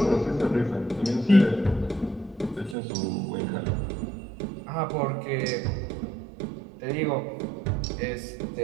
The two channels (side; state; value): left; drops out; at 2.8 s